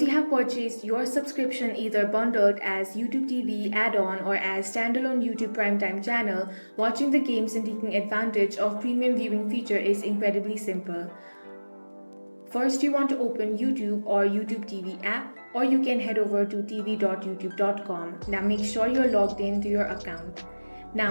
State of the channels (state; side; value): inverted; both; correlation -1.00